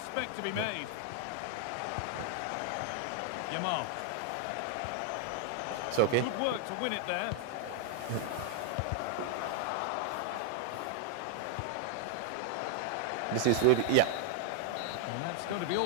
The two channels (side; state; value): both; different; correlation 0.00